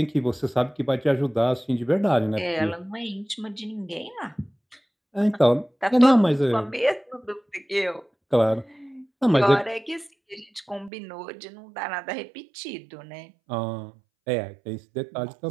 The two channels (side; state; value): left; drops out; at 10.9 s